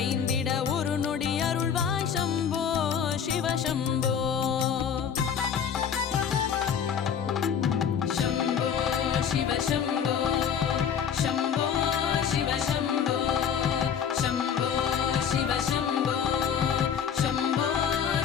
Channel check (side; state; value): right; quieter; 7.8 dB